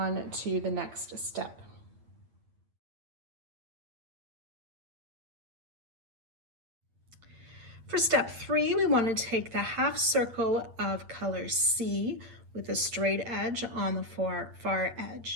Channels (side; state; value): left; late; 8.8 ms